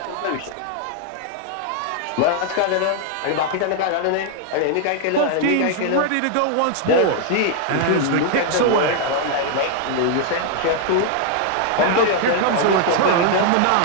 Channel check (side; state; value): both; different; correlation 0.00